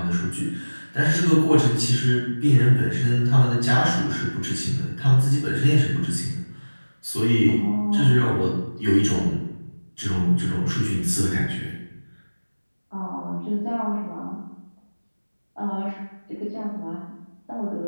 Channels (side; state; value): both; inverted; correlation -1.00